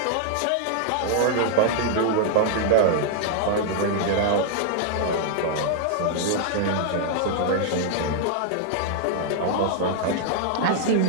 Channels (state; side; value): different; both; correlation -0.01